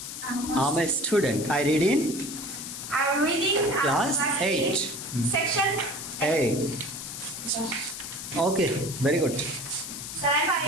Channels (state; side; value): noise; left; hiss, 8 dB below the sound